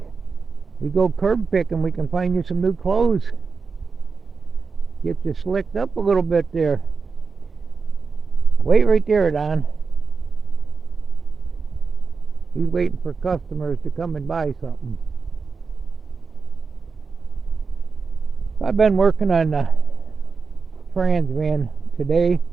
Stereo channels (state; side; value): quieter; left; 4.8 dB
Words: we go curb picking, we can find you some new clothes. Get you slicked up a little bit there. Wait right there, Don. He's waiting for customers to come and buy something. I've been working on the trans van today.